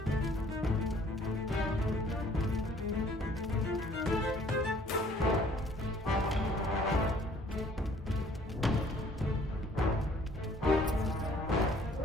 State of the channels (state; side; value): normal; both; correlation 0.58